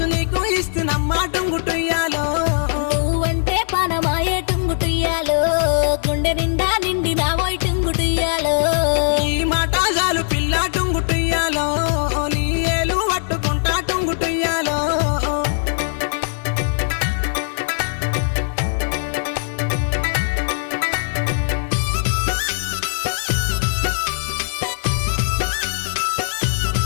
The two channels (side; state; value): right; silent; digital silence